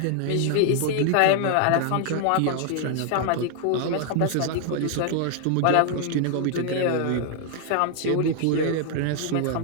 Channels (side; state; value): both; different; correlation 0.00